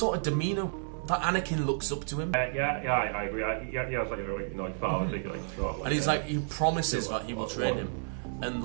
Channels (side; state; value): left; silent; digital silence